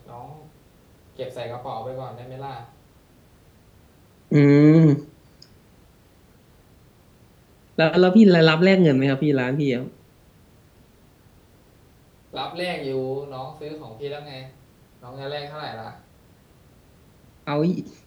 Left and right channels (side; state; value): both; identical; correlation 1.00